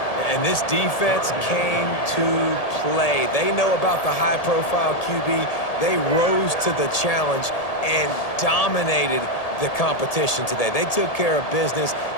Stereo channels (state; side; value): late; right; 1.8 ms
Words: And this defense came to play. They know about the high-profile QB. They rose to the challenge and dominated the competition today. They took care of business,